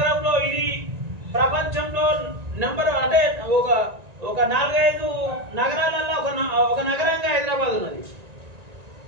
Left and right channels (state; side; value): late; left; 1.9 ms